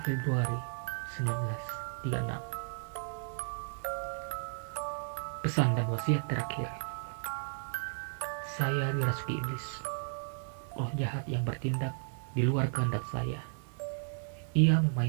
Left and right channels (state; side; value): silent; left; digital silence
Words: Februari 1936. Pesan dan wasiat terakhir. Saya dirasuki iblis, roh jahat yang bertindak di luar kehendak saya. Ia